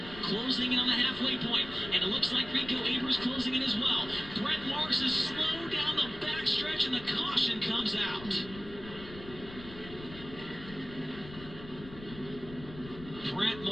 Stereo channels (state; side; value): noise; left; rumble, 15 dB below the sound